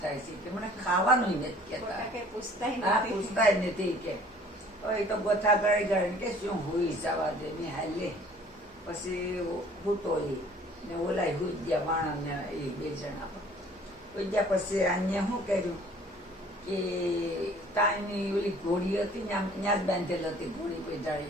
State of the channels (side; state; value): both; normal; correlation 0.53